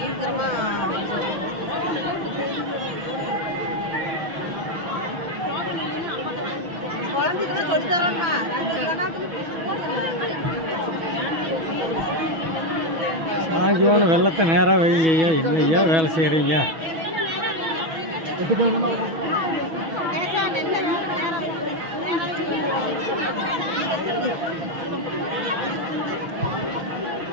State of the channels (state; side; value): late; left; 6.1 ms